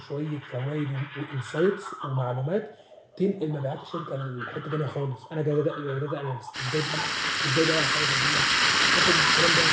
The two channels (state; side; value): identical; both; correlation 1.00